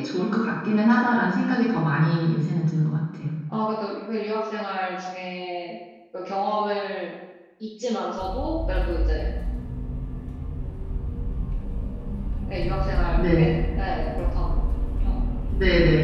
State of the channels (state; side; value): identical; both; correlation 1.00